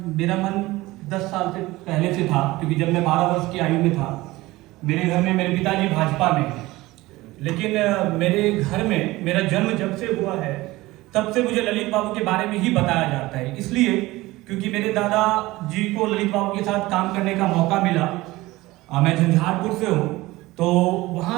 मेरा मन 10 साल से पहले से था, क्योंकि जब मैं 12 वर्ष की आयु में था, मेरे घर में मेरे पिताजी भाजपा में हैं, लेकिन मेरे घर में मेरा जन्म जब से हुआ है तब से मुझे ललित बाबू के बारे में ही बताया जाता है। इसलिए क्योंकि मेरे दादा जी को ललित बाबू के साथ काम करने का मौका मिला। मैं झंझारपुर से हूँ, तो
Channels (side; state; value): left; quieter; 19.3 dB